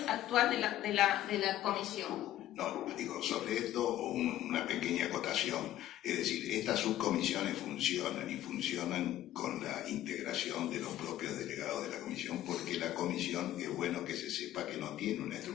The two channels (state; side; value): quieter; right; 13.2 dB